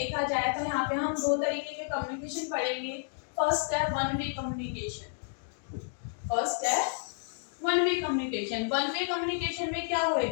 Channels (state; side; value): silent; right; digital silence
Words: जाए तो यहाँ पे हम दो तरीके के कम्युनिकेशन पढ़ेंगे। फर्स्ट है वन वे कम्युनिकेशन। फर्स्ट है one way communication, one way communication में क्या